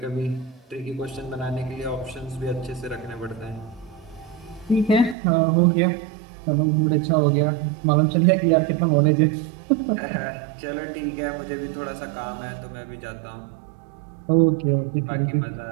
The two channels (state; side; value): drops out; left; at 5.2 s